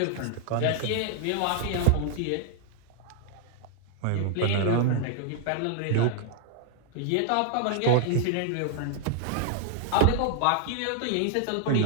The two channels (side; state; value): both; different; correlation 0.00